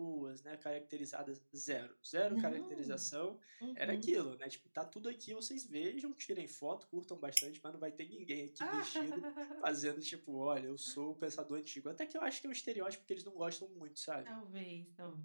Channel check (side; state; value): both; inverted; correlation -1.00